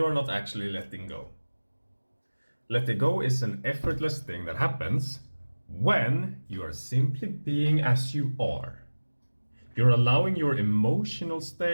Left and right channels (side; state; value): both; inverted; correlation -1.00